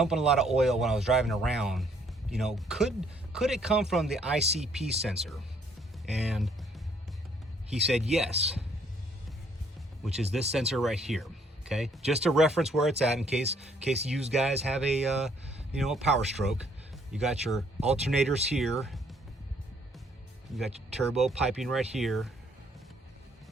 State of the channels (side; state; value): both; normal; correlation 0.65